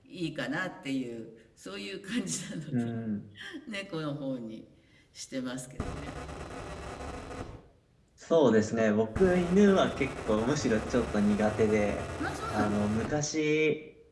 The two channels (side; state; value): both; identical; correlation 1.00